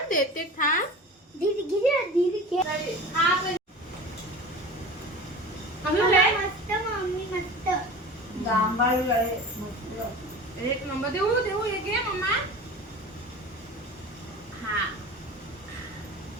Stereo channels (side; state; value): both; normal; correlation 0.36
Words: दीदी घे मस्त मम्मी मस्त जांभळी आहे मस्त। एक नंबर देऊ हे घे मम्मा। हा